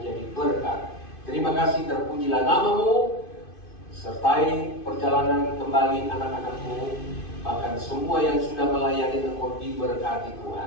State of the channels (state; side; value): late; right; 2.5 ms